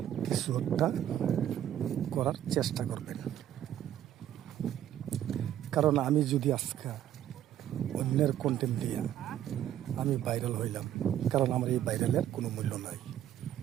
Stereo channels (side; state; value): left; quieter; 11.4 dB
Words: কিছু একটা করার চেষ্টা করবেন। কারণ আমি যদি আজকে অন্যের কন্টেন্ট দিয়ে আমি ভাইরাল হইলাম, কারণ আমার এই ভাইরালের কোনো মূল্য নাই।